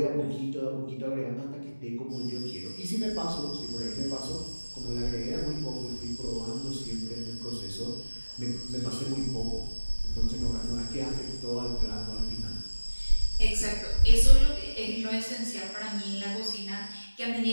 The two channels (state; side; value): inverted; both; correlation -1.00